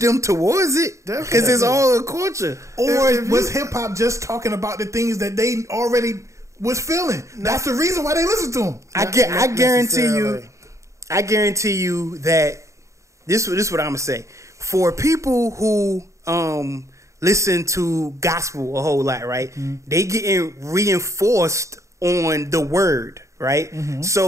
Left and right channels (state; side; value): late; left; 0.15 ms